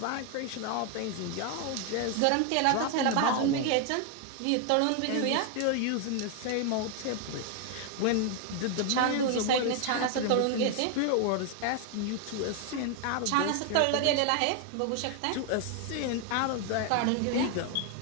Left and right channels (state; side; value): different; both; correlation 0.01